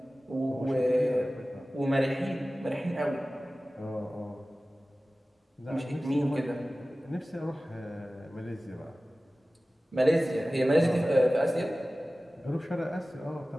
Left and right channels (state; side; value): normal; both; correlation 0.97